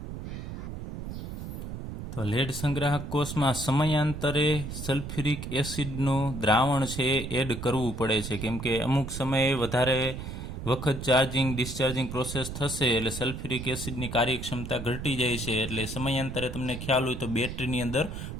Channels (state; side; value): noise; right; rumble, 7 dB below the sound